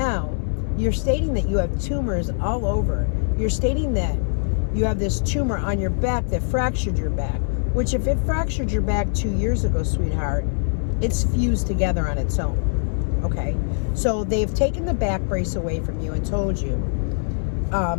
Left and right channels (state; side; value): silent; right; digital silence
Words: you're stating that you have tumors all over. You're stating that you have this tumor on your back that fractured your back, which if it fractured your back 2 years ago, sweetheart, it's fused together on its own. Okay? So they've taken the back brace away from you and told you